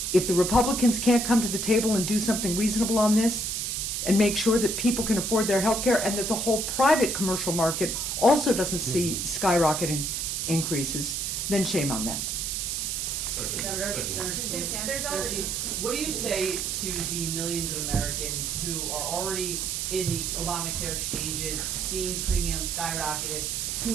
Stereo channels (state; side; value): noise; right; hiss, 1 dB below the sound